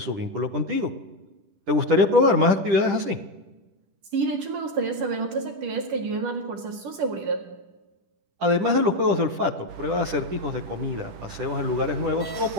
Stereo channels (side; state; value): left; late; 10 ms